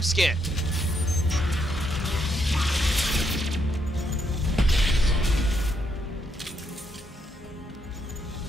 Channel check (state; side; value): normal; both; correlation 0.76